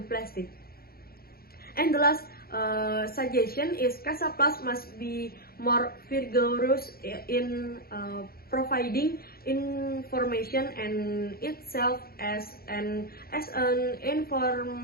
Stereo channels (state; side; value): late; right; 0.44 ms